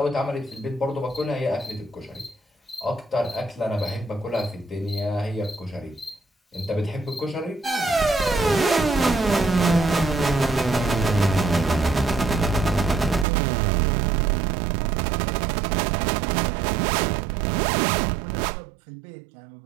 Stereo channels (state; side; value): drops out; left; at 13.2 s